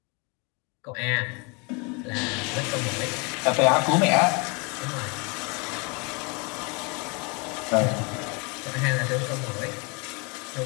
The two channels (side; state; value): right; quieter; 30.9 dB